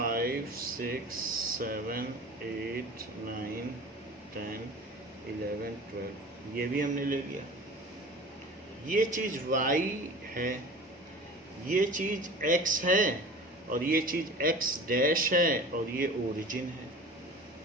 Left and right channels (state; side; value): normal; both; correlation 0.39